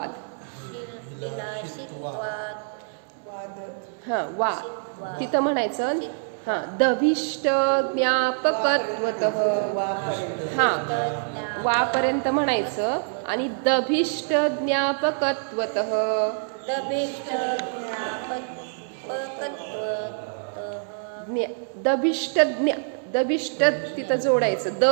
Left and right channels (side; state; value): left; silent; digital silence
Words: वा तिथं म्हणायचं दभिष्ट ज्ञापकत्वतः. वापर्यंत म्हणायचं आणि दभिष्ट ज्ञापकत्वतः. दभिष्ट तिथं जोडायचं, द